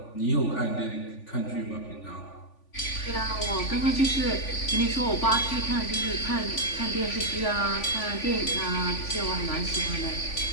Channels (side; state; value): right; late; 3.5 ms